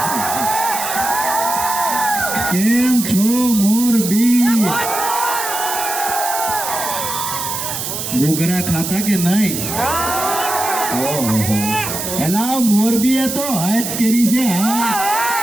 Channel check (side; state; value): right; noise; hiss, 4 dB below the sound